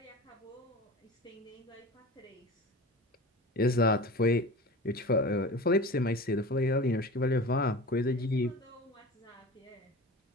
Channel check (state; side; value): normal; both; correlation 0.34